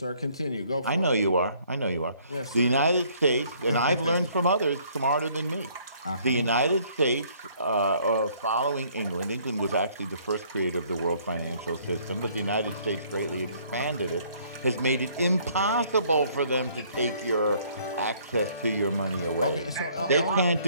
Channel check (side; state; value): both; inverted; correlation -0.62